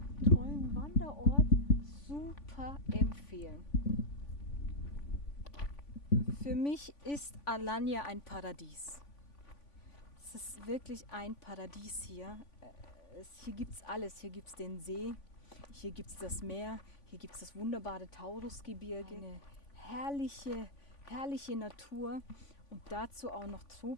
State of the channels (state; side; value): late; right; 3.5 ms